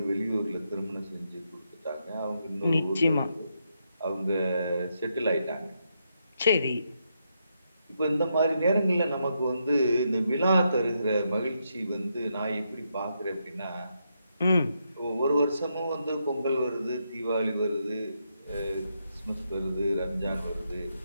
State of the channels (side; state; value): both; inverted; correlation -0.81